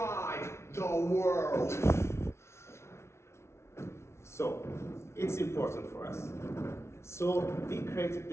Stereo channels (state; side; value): late; right; 0.13 ms